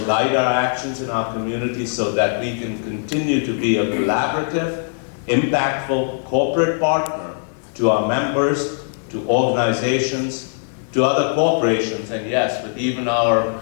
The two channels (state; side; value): silent; right; digital silence